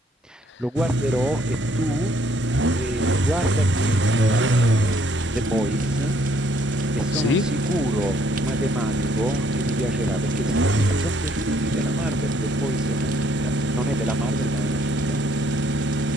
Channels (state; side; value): normal; both; correlation 0.66